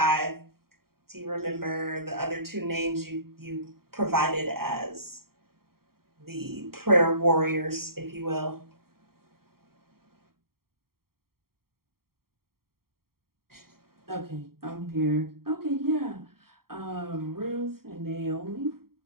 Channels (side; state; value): left; late; 0.93 ms